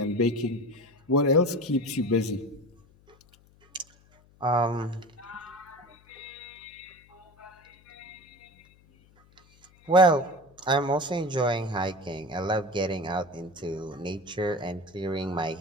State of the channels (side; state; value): left; noise; hum, 29 dB below the sound